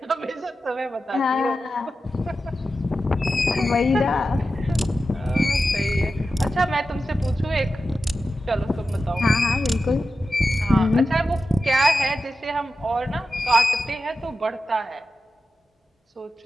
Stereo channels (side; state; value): both; normal; correlation 0.91